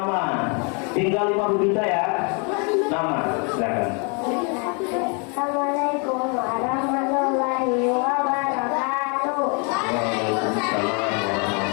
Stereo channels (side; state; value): right; quieter; 35.7 dB